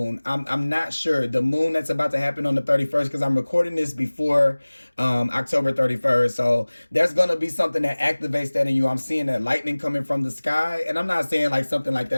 I'm not sure. The moon that's about to happen on the 31st, because I'm recording this before October 31st. So there's going to be something that activates that in you. I'm seeing that lightning coming from the sky, and I'm not saying like something like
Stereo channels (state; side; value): inverted; both; correlation -1.00